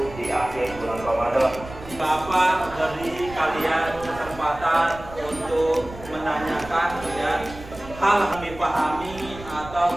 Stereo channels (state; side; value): noise; right; rumble, 15 dB below the sound